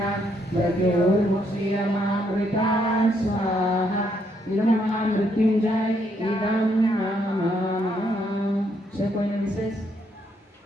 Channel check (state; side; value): normal; both; correlation 0.73